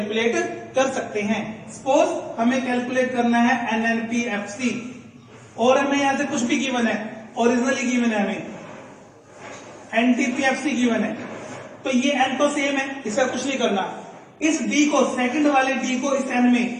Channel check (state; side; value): identical; both; correlation 1.00